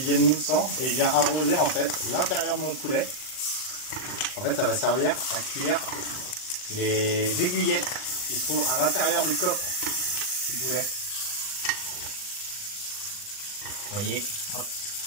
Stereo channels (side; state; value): right; late; 39 ms